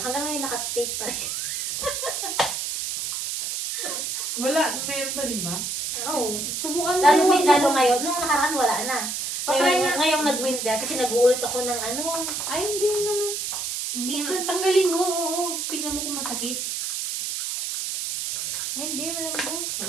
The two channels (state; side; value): noise; right; hiss, 3 dB below the sound